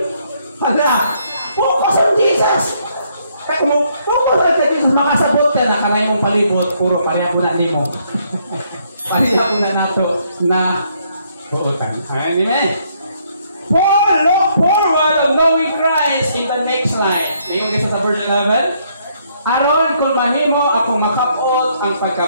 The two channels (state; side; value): inverted; both; correlation -0.70